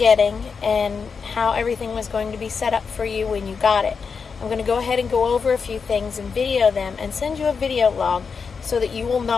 and how everything was going to be set up for you when you got it. I'm going to go ahead and go over a few things and video them and send you a video log so that you will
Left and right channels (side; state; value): right; quieter; 5.6 dB